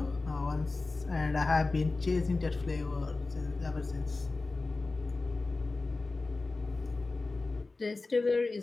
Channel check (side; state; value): right; quieter; 3.5 dB